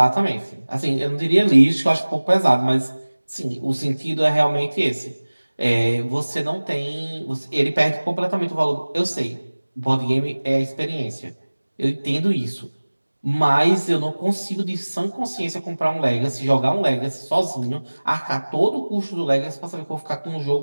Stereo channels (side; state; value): both; inverted; correlation -1.00